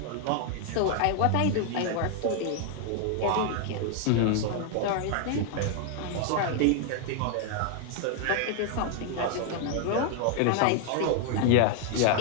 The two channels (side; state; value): both; different; correlation 0.00